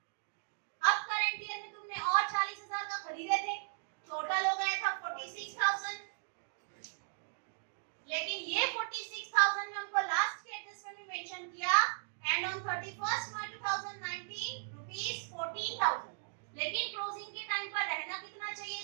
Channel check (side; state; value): left; silent; digital silence